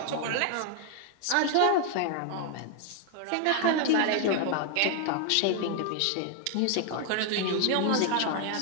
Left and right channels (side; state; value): both; different; correlation 0.00